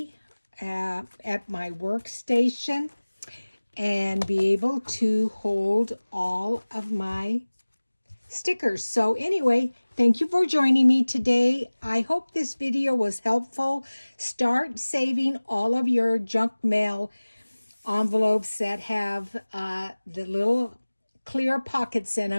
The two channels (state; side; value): inverted; both; correlation -1.00